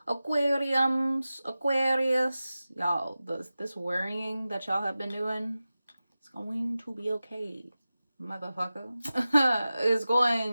Aquarius, y'all, this worrying that y'all have been doing, it's going to be okay, motherfucker. It's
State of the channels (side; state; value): both; inverted; correlation -0.95